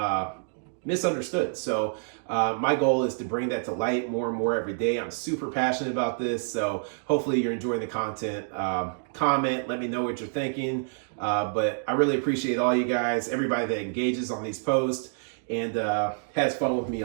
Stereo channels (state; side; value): silent; left; digital silence